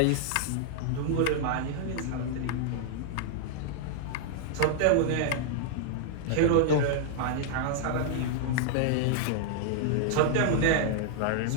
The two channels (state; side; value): different; both; correlation -0.01